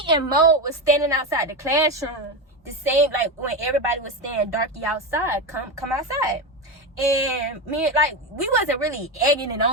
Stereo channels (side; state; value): both; normal; correlation 0.15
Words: and Mode was standing outside the classroom, the same, like, when everybody was saying Darky outside, come outside. And me, like, we wasn't really egging it